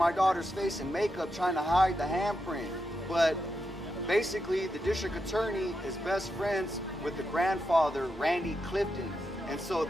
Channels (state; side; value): normal; both; correlation 0.86